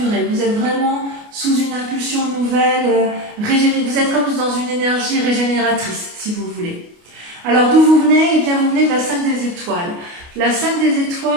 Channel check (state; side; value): late; left; 29 ms